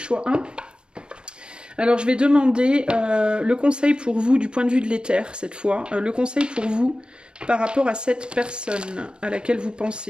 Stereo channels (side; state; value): left; late; 0.052 ms